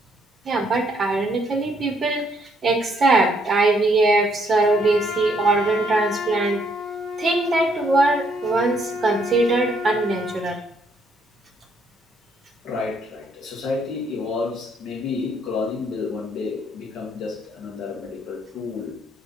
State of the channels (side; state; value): both; normal; correlation 0.70